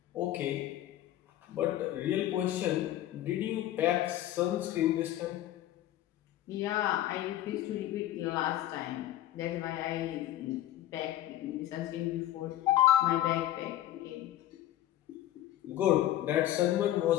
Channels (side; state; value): right; quieter; 13.4 dB